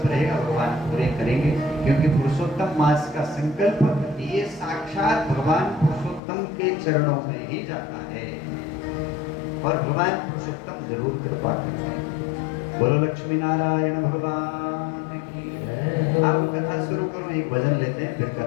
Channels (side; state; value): right; drops out; at 6.2 s